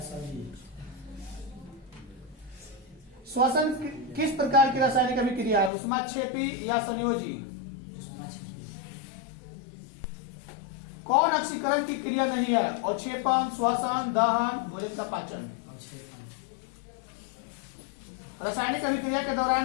श्वसन किस प्रकार की रासायनिक अभिक्रिया है? ऊष्माक्षेपी या संयोजी? कौन ऑक्सीकरण की क्रिया नहीं है? अवक्षेपण, श्वसन, दहन, भोजन का पाचन। रासायनिक अभिक्रिया के दौरान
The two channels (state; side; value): drops out; right; at 5.7 s